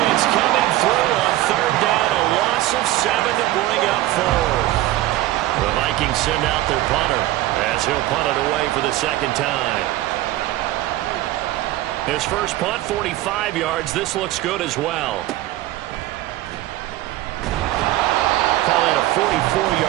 coming through on 3rd down. A loss of 7 to bring up 4. The Vikings send out their punter as he'll punt it away for the 2nd time. His first punt, 45 yards. This looks good as well. Call that a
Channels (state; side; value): quieter; left; 15.7 dB